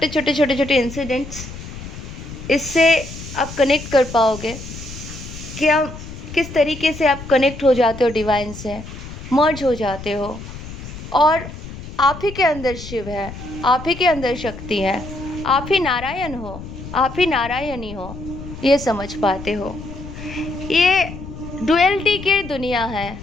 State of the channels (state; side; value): noise; left; rumble, 12 dB below the sound